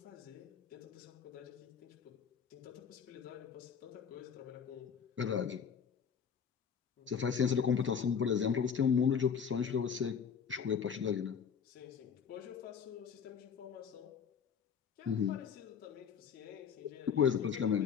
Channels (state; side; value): quieter; right; 7.1 dB